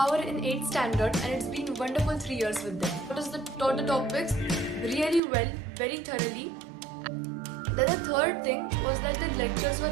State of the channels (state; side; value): drops out; left; at 5.2 s